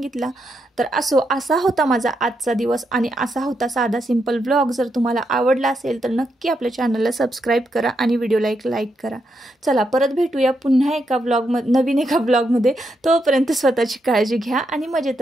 तर असा होता माझा आजचा दिवस. आणि असा होता साधा सिंपल व्लॉग. जर तुम्हाला आवडला असेल तर नक्की आपल्या चॅनलला सबस्क्राईब करा आणि व्हिडिओला एक लाईक करा. चला परत भेटूया पुन्हा एका नवीन एका ब्लॉगमध्ये. तोपर्यंत स्वतःची काळजी घ्या आणि मजेत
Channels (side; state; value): both; normal; correlation 0.81